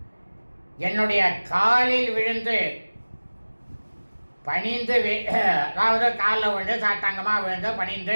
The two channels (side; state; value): both; inverted; correlation -1.00